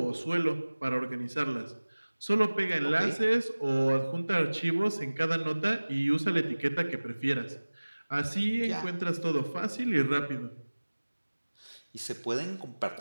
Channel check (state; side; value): inverted; both; correlation -1.00